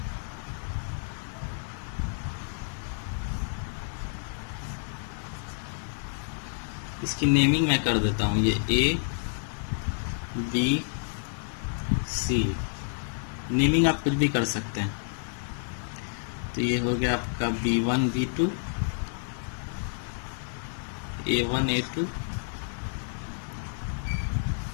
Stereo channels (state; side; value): silent; right; 58 dB below the other